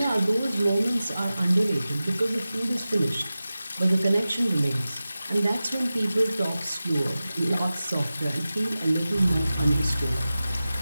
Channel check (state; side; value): inverted; both; correlation -0.95